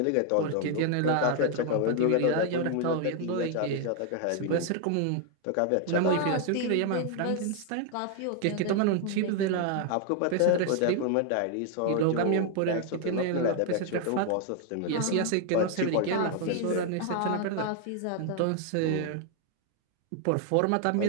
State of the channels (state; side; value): different; both; correlation 0.00